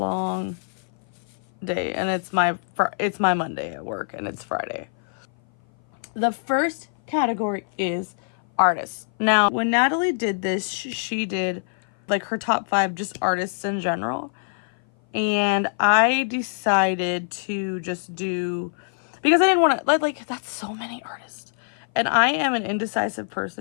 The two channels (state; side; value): silent; right; 57 dB below the other